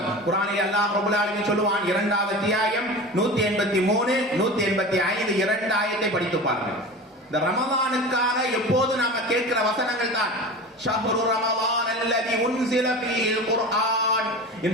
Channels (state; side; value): normal; both; correlation 0.32